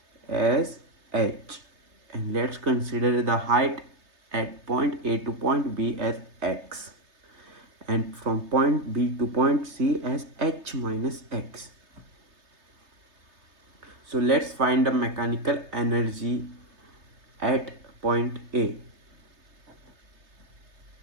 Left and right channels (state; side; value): late; left; 3.3 ms